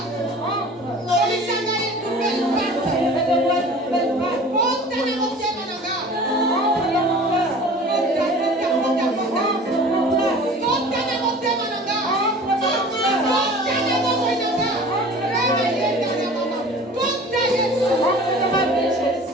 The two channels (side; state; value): both; normal; correlation 0.43